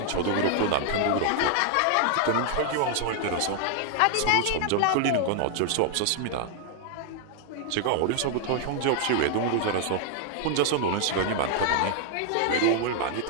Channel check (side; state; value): both; different; correlation 0.00